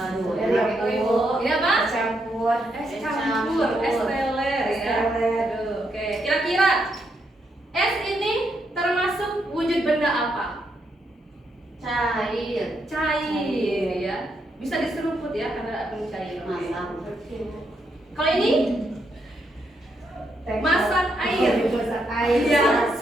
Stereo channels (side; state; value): both; normal; correlation 0.79